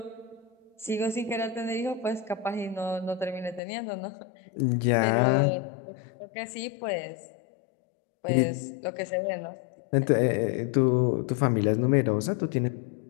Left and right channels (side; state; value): right; drops out; at 3.6 s